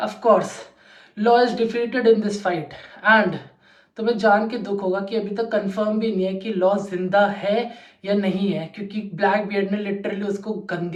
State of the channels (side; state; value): both; identical; correlation 1.00